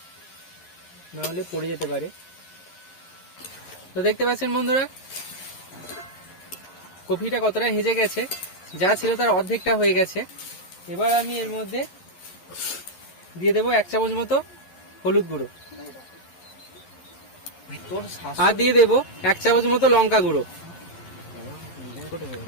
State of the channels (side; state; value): right; late; 11 ms